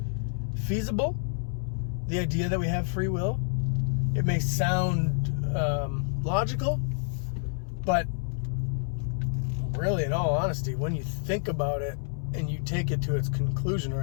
feasible, the idea that we have free will. It may sound logical, but really, in all honesty, when you think about it and you take it to its conclusion, or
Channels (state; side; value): silent; right; 59 dB below the other